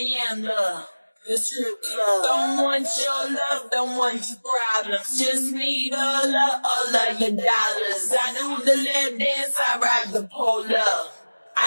am the strip club. Don't want your love, don't want your problems. Just need all of your dollars. I do the lap dance, I ride the pole up.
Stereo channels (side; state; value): both; inverted; correlation -1.00